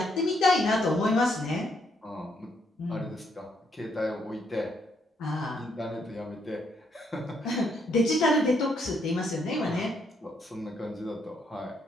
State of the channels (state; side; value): normal; both; correlation 0.74